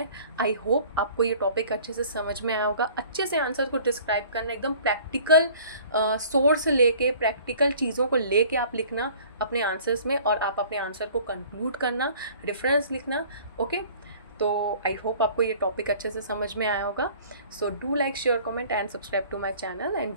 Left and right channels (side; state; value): both; inverted; correlation -0.50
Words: आई होप आपको ये टॉपिक अच्छे से समझ में आया होगा। अच्छे से आंसर को डिस्क्राइब करना, एकदम प्रैक्टिकल सोर्स लेके, प्रैक्टिकल चीज़ों को लेके आप लिखना अपने आंसर्स में, और आप अपने आंसर को कंक्लूड करना, रेफरेंस लिखना। ओके, तो आई होप आपको ये टॉपिक अच्छे से समझ में आया होगा। So do like, share, comment and subscribe to my channel and